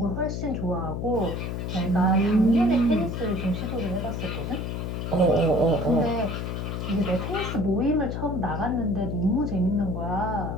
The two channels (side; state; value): left; noise; hum, 3 dB below the sound